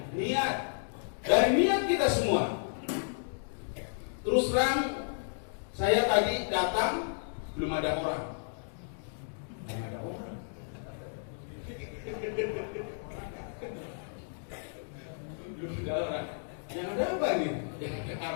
niat, dari niat kita semua. Terus terang, saya tadi datang belum ada orang. Belum ada orang. Belum ada orang. Yang ada apa nih? Yang ada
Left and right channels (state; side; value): silent; right; digital silence